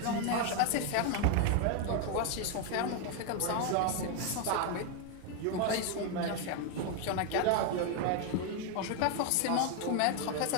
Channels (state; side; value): different; both; correlation 0.01